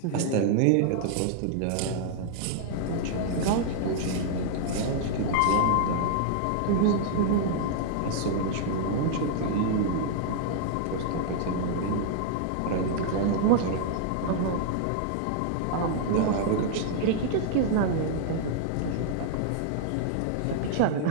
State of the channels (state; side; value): different; both; correlation -0.01